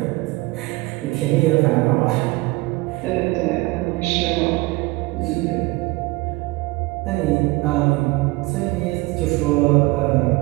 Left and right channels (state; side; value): quieter; left; 22.3 dB